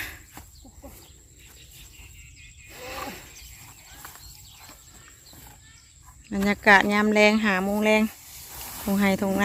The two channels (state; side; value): identical; both; correlation 1.00